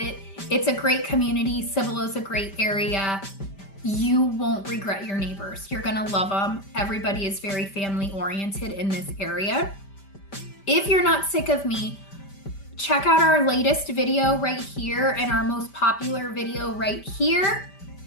It's a great community. Cibolo's a great area. You won't regret your neighbors. You're gonna love them. Everybody is very family oriented in this area. If you're not sick of me, check out our latest video right here and our most popular video right here.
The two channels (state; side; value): late; right; 5.1 ms